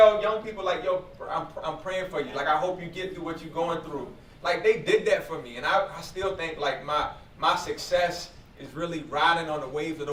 young people, like, yo, I'm praying for you. Like, I hope you get through what you're going through. Like, they did that for me. And I still think, like, my success is really riding on the waves of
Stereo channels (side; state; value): both; identical; correlation 1.00